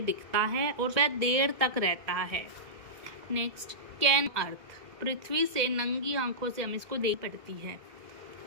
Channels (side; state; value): left; late; 1.6 ms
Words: दिखता है और वह देर तक रहता है। नेक्स्ट, कैन अर्थ, पृथ्वी से नंगी आंखों से हम इसको देख पड़ती है।